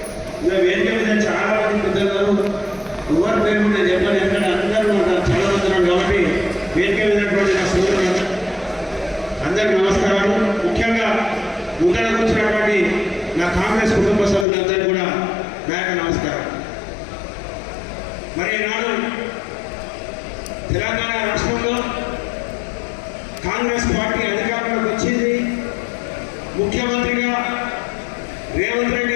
వేదిక మీద చాలా మంది పెద్దలు, ఎవరి పేరు నేను చెప్పాను, ఎందుకంటే అందరూ చాలా మంది కాబట్టి వేదిక మీదటువంటి నా సోదరులు అందరికీ నమస్కారాలు. ముఖ్యంగా ముందర కూర్చున్నటువంటి నా కాంగ్రెస్ కుటుంబ సభ్యులందరికీ కూడా నా యొక్క నమస్కారం. మరి ఈనాడు తెలంగాణ రాష్ట్రంలో కాంగ్రెస్ పార్టీ అధికారంలోకి వచ్చింది. ముఖ్యమంత్రిగా రేవంత్ రెడ్డి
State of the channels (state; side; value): drops out; right; at 14.5 s